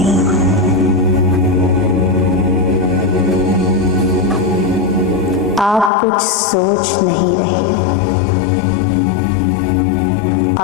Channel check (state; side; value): drops out; right; at 5.9 s